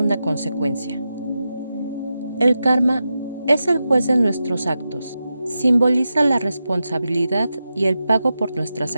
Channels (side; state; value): both; inverted; correlation -0.90